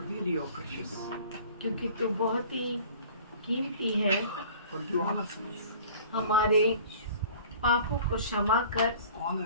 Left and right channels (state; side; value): inverted; both; correlation -0.47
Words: your precious. क्योंकि तू बहुत ही कीमती है। Forgive all our sins, हमारे पापों को क्षमा कर, all